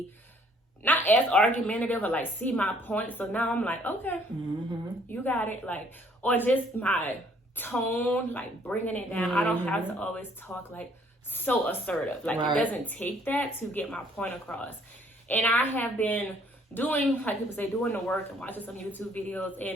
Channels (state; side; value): normal; both; correlation 0.61